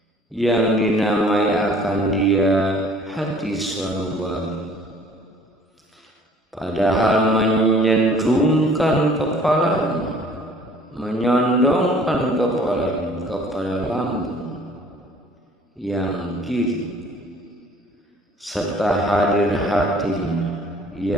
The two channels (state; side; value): normal; both; correlation 0.53